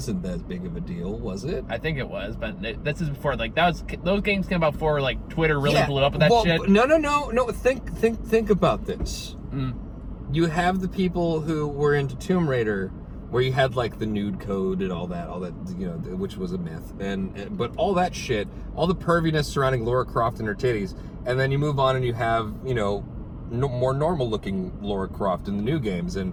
that big of a deal, was it? I think it was, but this is before those games came out before like Twitter really blew up with that shit. No. Think about this. You have the people who were into Tomb Raider, where you had like the nude code and all that, you know, which was a myth, but all that shit, all the perviness surrounding Lara Croft and her titties, and then you move on and you have, you know, more normal looking Lara Croft in the new games, and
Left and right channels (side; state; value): both; identical; correlation 1.00